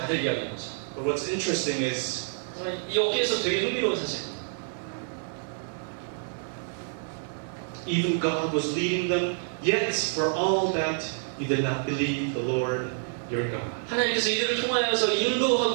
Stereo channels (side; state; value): left; silent; digital silence